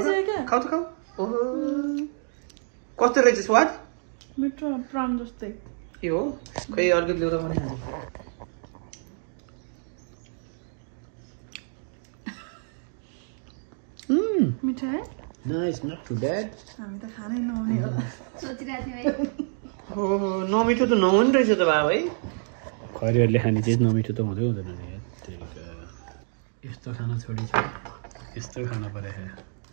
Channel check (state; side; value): silent; left; 59 dB below the other